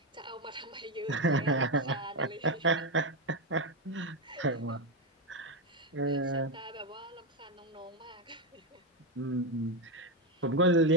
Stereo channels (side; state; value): both; normal; correlation 0.08